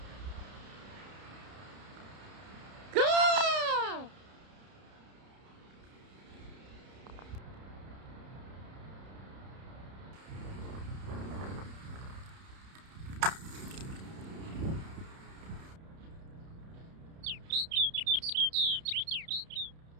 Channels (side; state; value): left; late; 31 ms